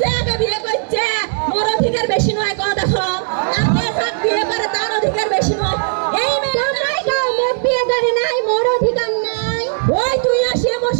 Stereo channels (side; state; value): left; silent; digital silence